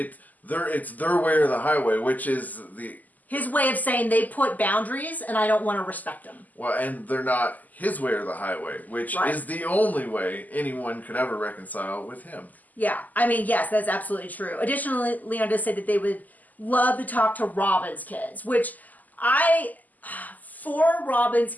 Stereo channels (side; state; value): right; late; 0.081 ms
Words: their way or the highway, which is his way of saying they put boundaries and I don't want to respect them. Well, and they're not his way or the highway, which is the only way anyone could ever reconcile with him. Yeah, I mean, yes, that's absolutely true. Additionally, Leon does say that they would love to talk to Robin's kids, which for Robin's